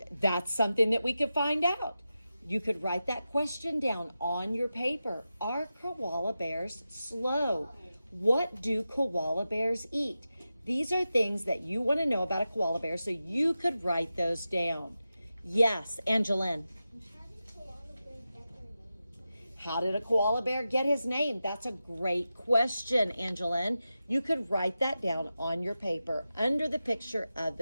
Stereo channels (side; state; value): both; inverted; correlation -0.92